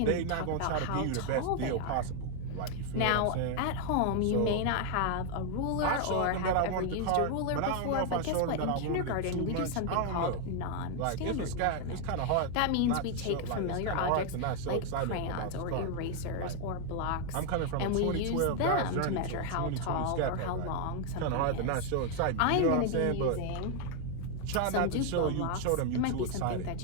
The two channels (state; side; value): different; both; correlation 0.00